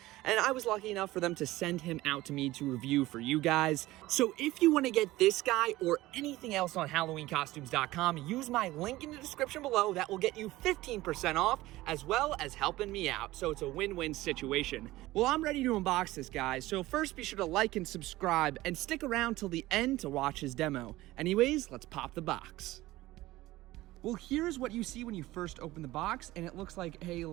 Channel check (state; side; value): quieter; left; 17.6 dB